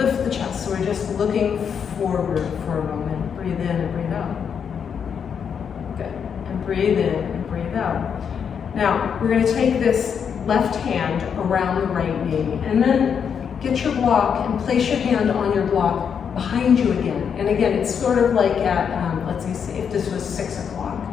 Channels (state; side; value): quieter; right; 7.2 dB